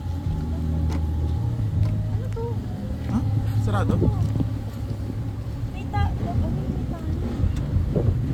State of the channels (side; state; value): both; identical; correlation 1.00